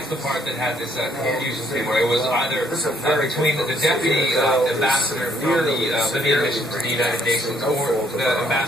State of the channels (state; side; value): normal; both; correlation 0.67